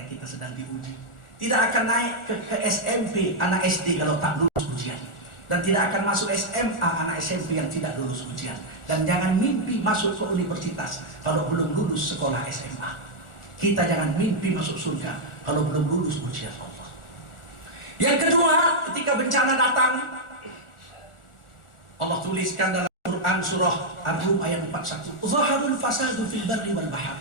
kita sedang diuji. Tidak akan naik ke SMP anak SD kalau tak lulus ujian, dan tidak akan masuk SMA anak SMP yang tidak lulus ujian. Dan jangan mimpi masuk ke universitas kalau belum lulus sekolah SMA. Kita jangan mimpi masuk surga kalau belum lulus ujian Allah. Yang kedua, ketika bencana datang, Allah tuliskan dalam Quran surah Ar-Rum ayat 41, Zaharul fasadu fil barri wal bahr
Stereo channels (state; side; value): late; right; 1.4 ms